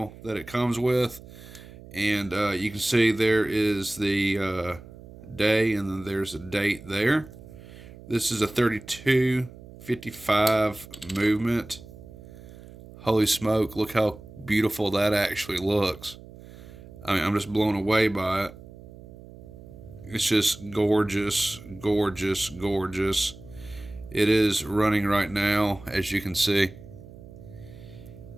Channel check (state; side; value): noise; right; hum, 18 dB below the sound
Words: that it comes with. And you can see there is the day, and then there's a date there. This is a 3255 movement. Holy smoke, look how beautiful that actually looks. I mean, I'm just blown away by it. It's just gorgeous, gorgeous, gorgeous. It is running right now, as you can see.